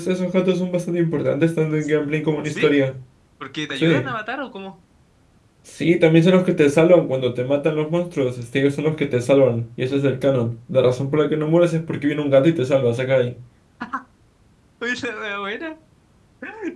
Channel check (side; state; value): both; identical; correlation 1.00